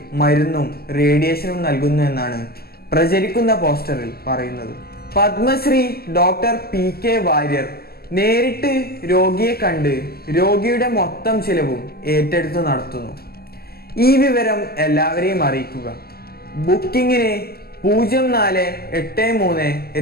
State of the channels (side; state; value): right; late; 0.45 ms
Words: മരുന്നും റേഡിയേഷനും നൽകുന്നു എന്നാണ് പ്രചരിക്കുന്ന പോസ്റ്ററിൽ പറയുന്നത്. പത്മശ്രീ ഡോക്ടർ PK വാര്യർ നേരിട്ട് രോഗിയെ കണ്ട് രോഗിയുടെ മൊത്തം ചിലവും ഏറ്റെടുത്ത് നടത്തുന്നു. ഈ വിവരം എല്ലാവരെയും അറിയിക്കുക. ബുക്കിങ്ങിന്